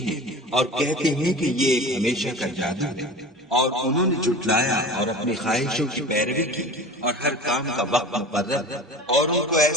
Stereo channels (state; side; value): normal; both; correlation 0.36